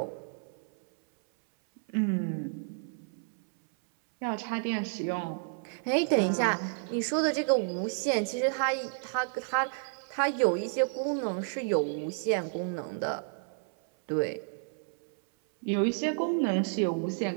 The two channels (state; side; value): silent; left; 57 dB below the other